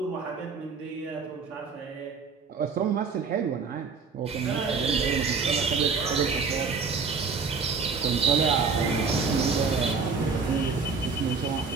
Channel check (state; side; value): quieter; left; 5.0 dB